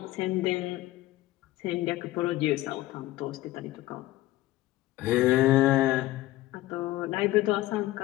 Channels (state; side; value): quieter; right; 17.0 dB